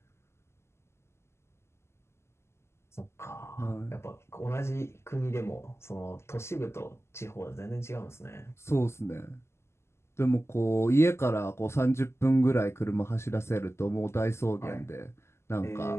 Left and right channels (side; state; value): right; late; 0.13 ms